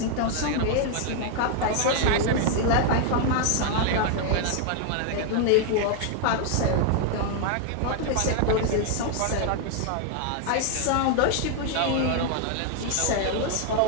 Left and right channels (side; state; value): both; different; correlation 0.00